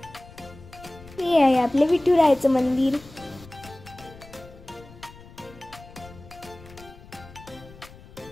हे आहे आपले विठुरायाचं मंदिर.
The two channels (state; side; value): noise; left; rumble, 20 dB below the sound